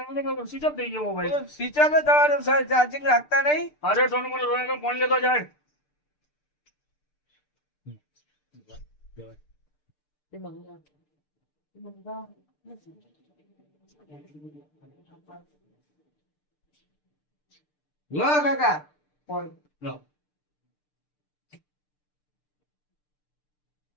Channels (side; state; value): right; late; 6.7 ms